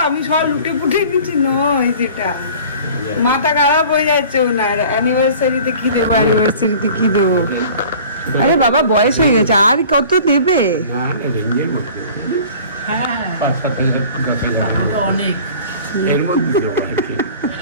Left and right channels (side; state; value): both; inverted; correlation -0.45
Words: আমি সব লুটে পুটে দিচ্ছি, নয় যেটা মাথা খারাপ হয়ে যাচ্ছে ওনার, অ্যানিভার্সারিতে কি দেবো, অ্যানিভার্সারিতে কি দেবো। আরে বাবা বয়স হয়ে গেছে, আর কত দেবে? না না, রেঞ্জের মধ্যে 5-7 হাজার 10 হাজার অনেক এর মধ্যে দেবো আর কি।